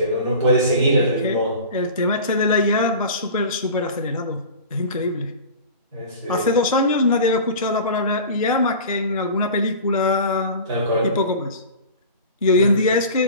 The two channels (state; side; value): inverted; both; correlation -0.37